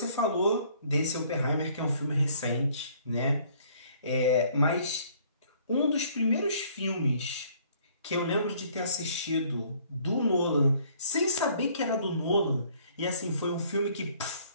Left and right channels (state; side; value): inverted; both; correlation -0.60